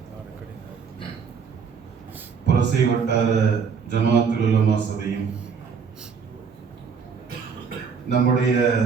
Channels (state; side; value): quieter; left; 6.1 dB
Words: புரசை வட்டார ஜமாத்துல் உலமா சபையும் நம்முடைய